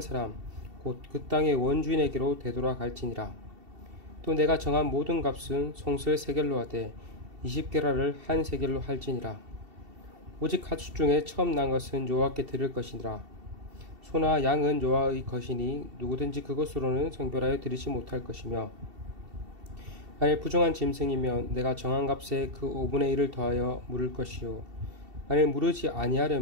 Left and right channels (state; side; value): late; left; 2.7 ms